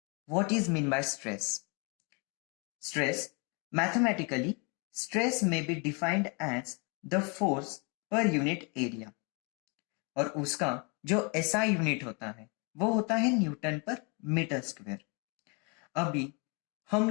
what is mean by stress. Stress mathematically stress में be defined as the force per unit area और उसका जो एसआई यूनिट होता है वो होता है न्यूटन पर मीटर स्क्वायर। अभी हम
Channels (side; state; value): right; quieter; 33.3 dB